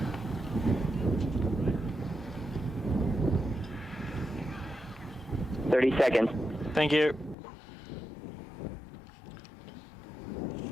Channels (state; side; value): drops out; right; at 7.4 s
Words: Seconds. Thank you.